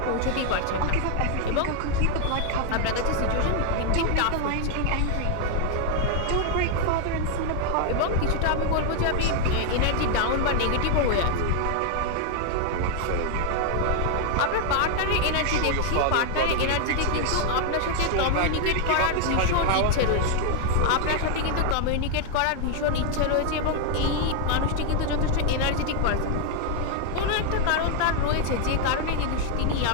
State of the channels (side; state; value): both; different; correlation 0.00